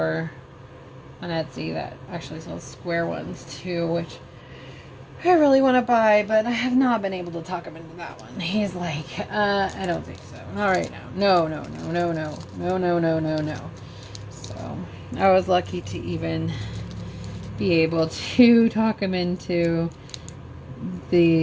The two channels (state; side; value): identical; both; correlation 1.00